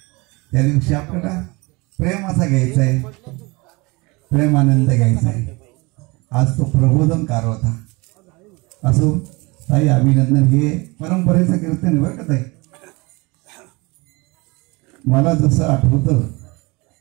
त्या दिवशी आपल्याला प्रेम असा घ्यायचा आहे, प्रेमानंद घ्यायचा आहे. आज तो प्रबोधनकार होता. असो ताई, अभिनंदन. हे परंपरेचं कीर्तन आहे बरं का ताई. मला जसं आठवतं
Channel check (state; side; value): quieter; left; 25.4 dB